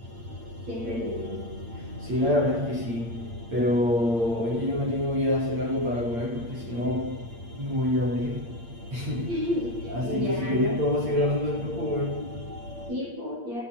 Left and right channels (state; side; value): late; left; 8.6 ms